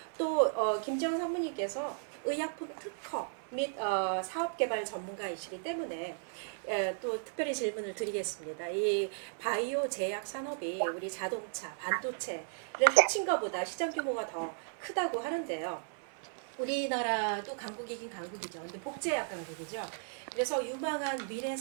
또 김지영 상무님께서 의약품 특허 및 사업개발 전문가이시기 때문에 또 특별히 질문을 드리겠습니다. 이 바이오 제약 산업이 우리 자동차, 반도체를 합친 것보다 시장 규모가 더 크다고 하는데요. 우리나라도 강국이긴 강국이죠. 근데 복제약 강국이죠. 그래서 유망한 미래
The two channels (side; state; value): left; silent; 54 dB below the other